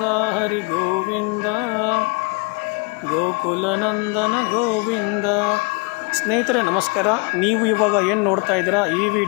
ಹರಿ ಗೋವಿಂದ ಗೋಕುಲನಂದನ ಗೋವಿಂದ. ಸ್ನೇಹಿತರೆ ನಮಸ್ಕಾರ. ನೀವು ಇವಾಗ ಏನು ನೋಡ್ತಾ ಇದ್ದೀರಾ, ಈ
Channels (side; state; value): right; quieter; 31.2 dB